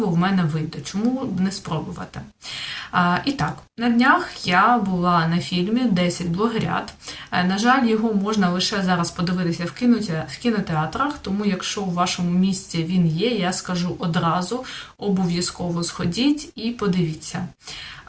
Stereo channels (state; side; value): identical; both; correlation 1.00